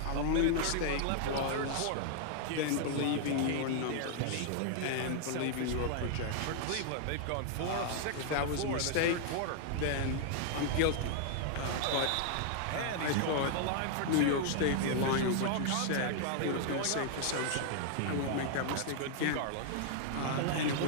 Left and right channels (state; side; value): different; both; correlation 0.00